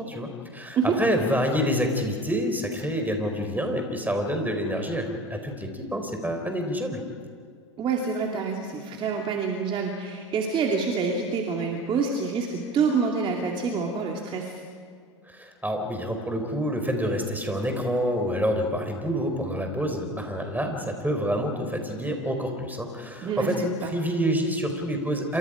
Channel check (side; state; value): both; normal; correlation 0.43